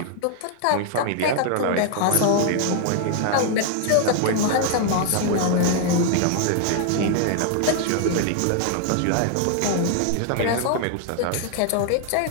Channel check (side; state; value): both; different; correlation 0.00